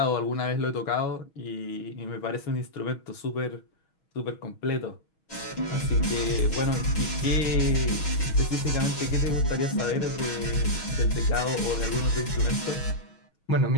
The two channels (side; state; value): right; late; 6.3 ms